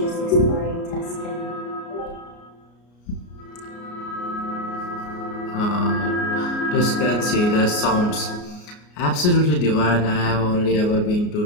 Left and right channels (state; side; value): late; right; 33 ms